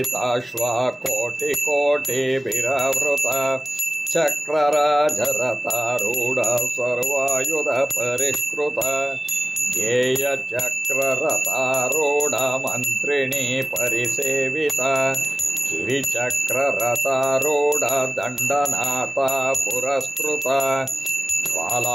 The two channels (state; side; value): normal; both; correlation 0.96